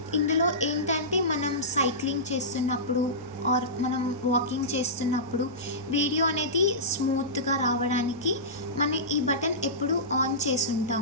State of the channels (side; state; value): both; normal; correlation -0.18